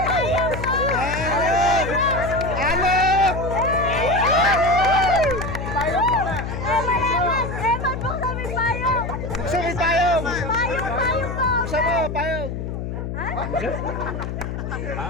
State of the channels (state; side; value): noise; left; hum, 5 dB below the sound